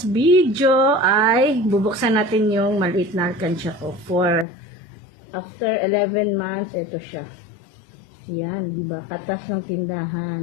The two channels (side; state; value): right; drops out; at 4.5 s